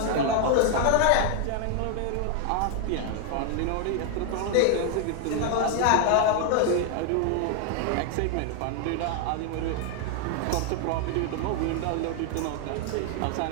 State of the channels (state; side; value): different; both; correlation 0.00